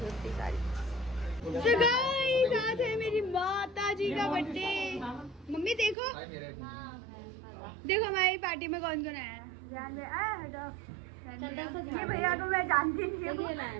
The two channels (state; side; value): drops out; left; at 6.0 s